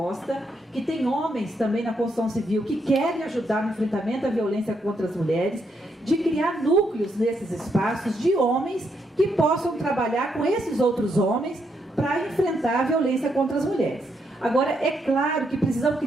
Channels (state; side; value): normal; both; correlation 0.78